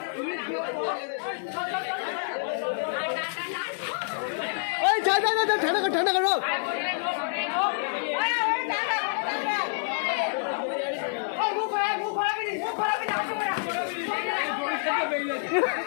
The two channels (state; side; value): silent; right; digital silence